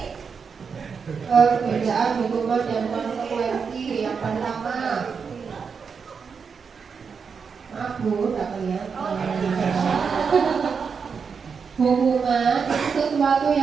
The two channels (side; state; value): left; quieter; 5.9 dB